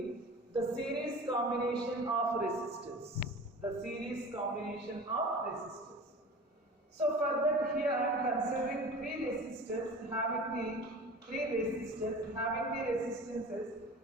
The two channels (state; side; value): normal; both; correlation 0.37